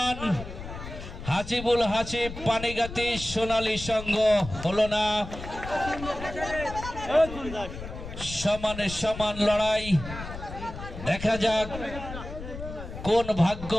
হাসিবুল হাসিব পানিগাতি সোনালী সংঘ হলো না। সমানে সমান লড়াই দেখা যাক কোন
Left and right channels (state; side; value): noise; left; rumble, 10 dB below the sound